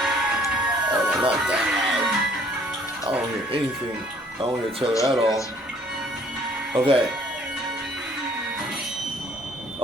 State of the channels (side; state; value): both; normal; correlation 0.59